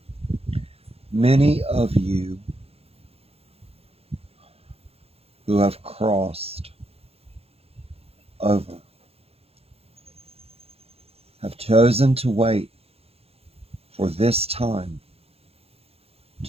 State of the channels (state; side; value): late; left; 0.29 ms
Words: many of you who have crossed over have chosen to wait for this time